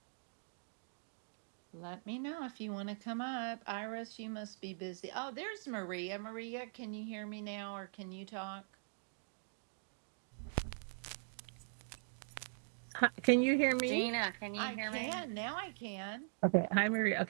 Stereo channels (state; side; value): silent; left; digital silence